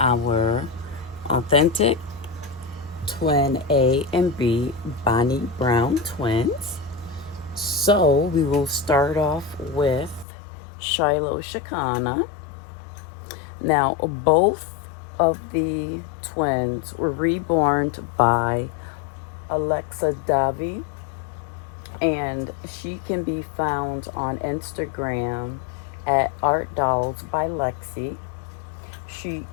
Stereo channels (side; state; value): right; drops out; at 10.2 s